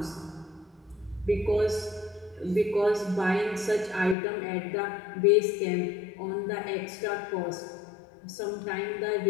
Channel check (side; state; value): right; drops out; at 4.2 s